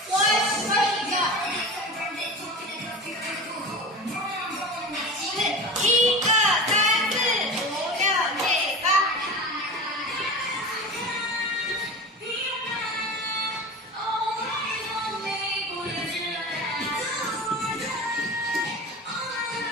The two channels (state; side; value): normal; both; correlation 0.31